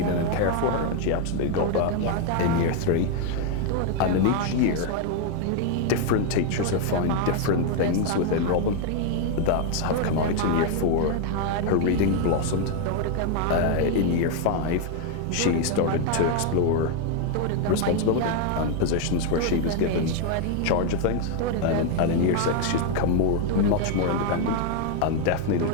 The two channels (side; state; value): both; different; correlation 0.01